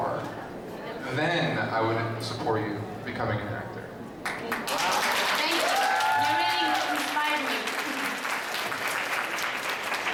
then I would support you becoming an actor. Thank you. You really inspired me.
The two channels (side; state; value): both; identical; correlation 1.00